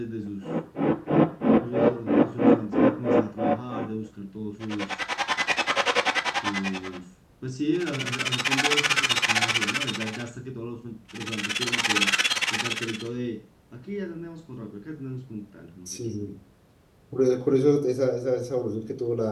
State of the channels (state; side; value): identical; both; correlation 1.00